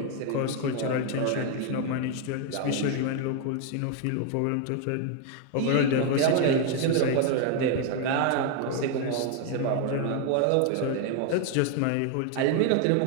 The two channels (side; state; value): both; different; correlation 0.01